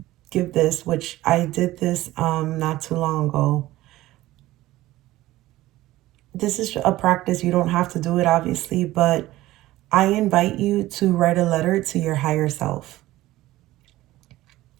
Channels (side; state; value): left; quieter; 16.6 dB